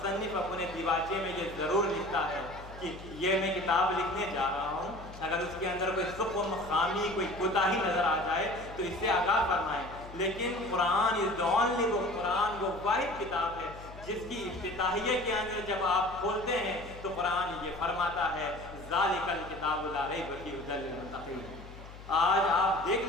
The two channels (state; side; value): noise; left; hum, 16 dB below the sound